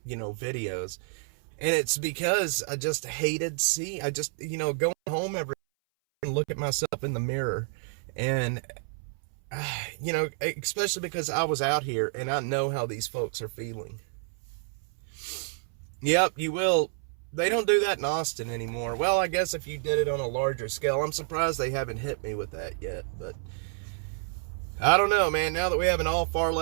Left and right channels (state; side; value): silent; left; 58 dB below the other